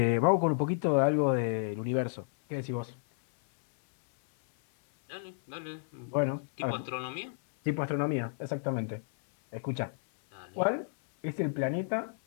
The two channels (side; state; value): right; silent; 57 dB below the other